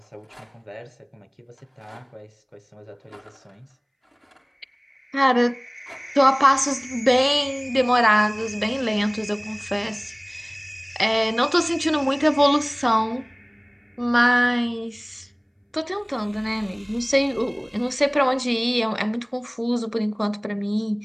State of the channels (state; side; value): identical; both; correlation 1.00